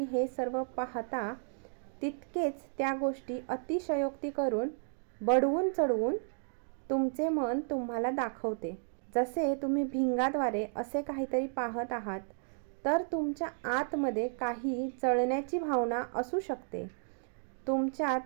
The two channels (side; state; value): left; silent; digital silence